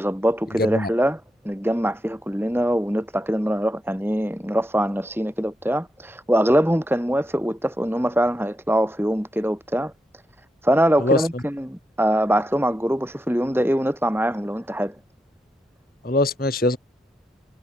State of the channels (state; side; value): normal; both; correlation 0.85